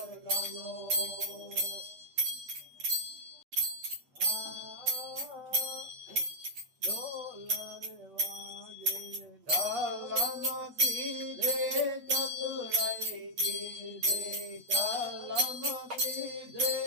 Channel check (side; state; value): left; late; 8.2 ms